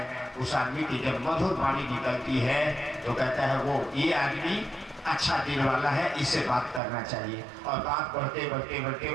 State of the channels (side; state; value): left; drops out; at 6.8 s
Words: उस आदमी की जब मधुर वाणी निकलती है तो कहता है वो ये आदमी अच्छा दिल वाला है, इससे बात करना चाहिए। और बात बढ़ते बढ़ते बढ़ते